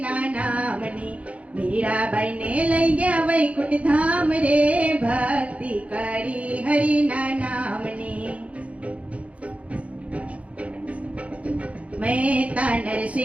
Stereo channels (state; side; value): late; left; 0.065 ms